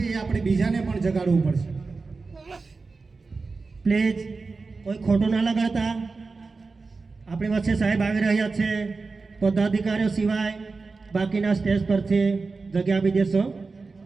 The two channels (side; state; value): left; quieter; 4.1 dB